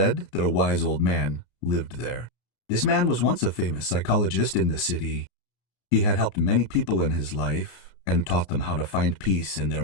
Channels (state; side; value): late; right; 32 ms